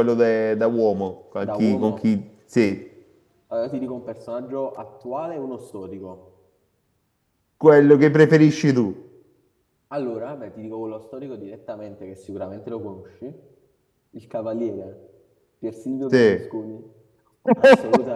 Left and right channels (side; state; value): both; identical; correlation 1.00